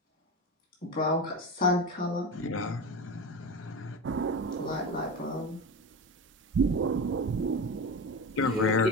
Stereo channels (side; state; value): both; normal; correlation 0.24